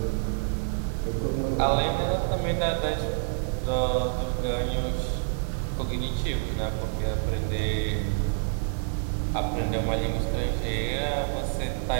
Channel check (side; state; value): left; silent; digital silence